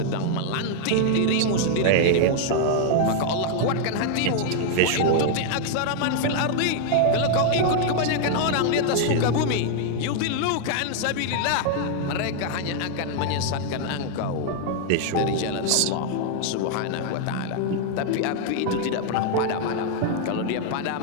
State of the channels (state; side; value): different; both; correlation 0.00